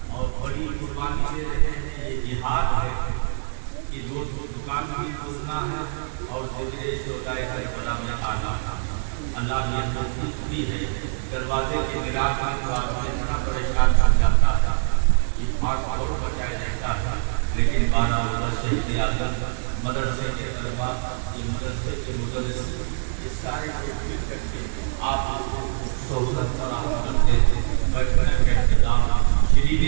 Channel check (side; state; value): left; silent; 60 dB below the other